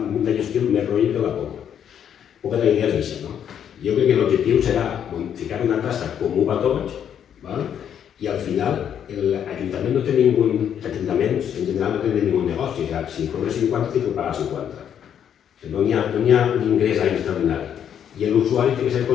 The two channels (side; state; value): right; quieter; 9.0 dB